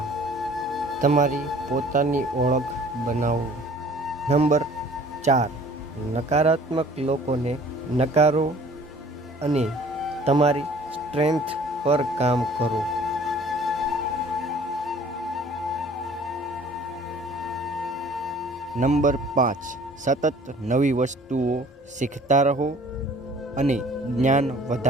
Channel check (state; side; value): normal; both; correlation 0.51